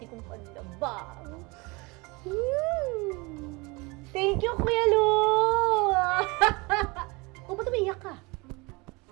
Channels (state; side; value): quieter; left; 26.3 dB